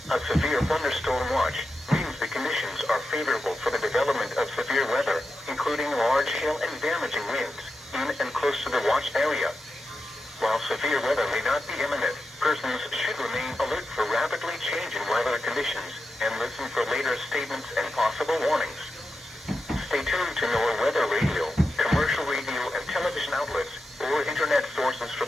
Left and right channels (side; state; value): both; normal; correlation 0.89